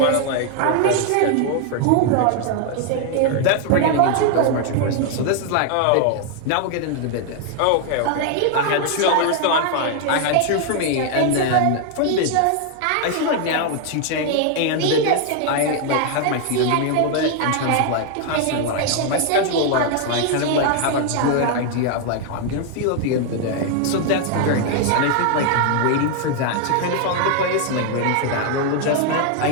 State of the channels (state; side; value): different; both; correlation 0.00